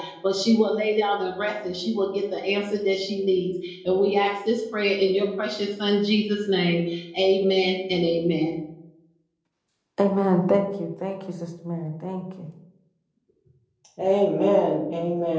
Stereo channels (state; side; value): identical; both; correlation 1.00